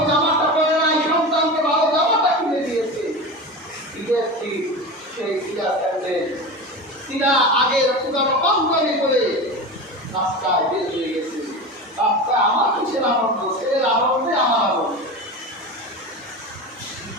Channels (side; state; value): both; normal; correlation 0.27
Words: জামাটা পরে নাই, সন্তানকে ভালো জামাটা কিনে দিয়েছে। ঈদের ঠিক সেই ক্রীড়া স্যান্ডেল তিনা আগের পুরানো পাঞ্জাবি করে রাস্তায় বের হয়ে গেছে। রাস্তায় আমার কিসের আনন্দ, ছেলের আনন্দে আমার আনন্দ।